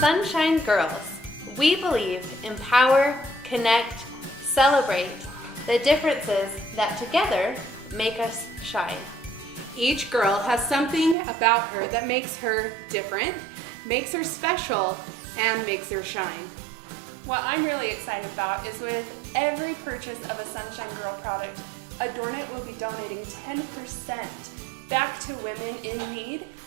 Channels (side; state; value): left; drops out; at 11.2 s